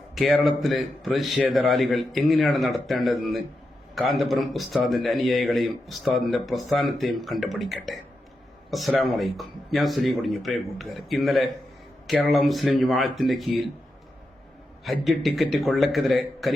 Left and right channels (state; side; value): normal; both; correlation 0.87